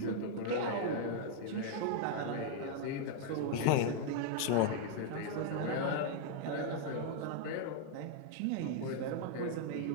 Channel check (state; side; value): different; both; correlation -0.01